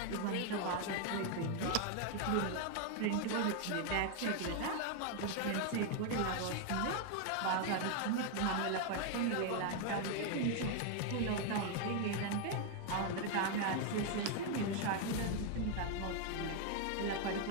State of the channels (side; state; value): both; different; correlation 0.00